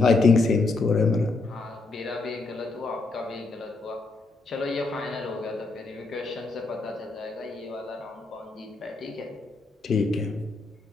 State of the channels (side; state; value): right; quieter; 3.6 dB